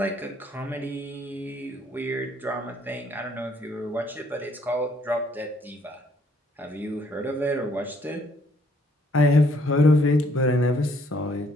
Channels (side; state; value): both; normal; correlation 0.65